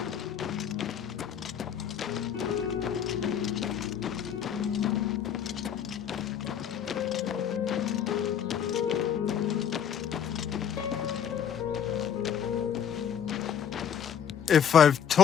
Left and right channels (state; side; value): quieter; right; 8.6 dB